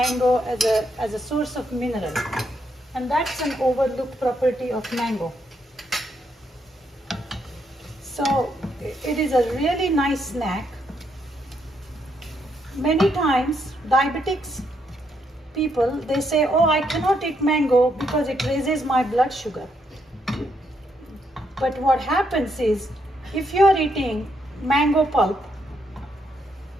as a source of mineral, and that's an overlooked property of mango. So it is a really nice snack. Many times diabetics people, they say, oh, I cannot eat mango because it raises my blood sugar. But what happens is, if you are eating mango pulp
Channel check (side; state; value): both; normal; correlation 0.77